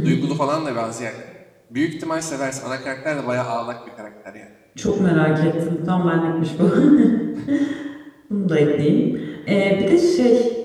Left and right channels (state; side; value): identical; both; correlation 1.00